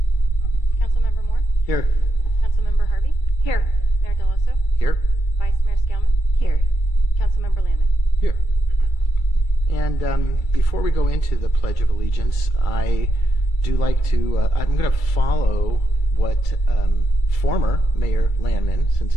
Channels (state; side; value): late; right; 2.3 ms